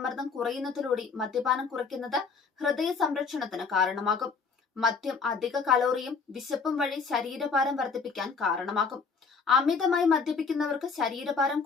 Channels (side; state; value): right; quieter; 5.1 dB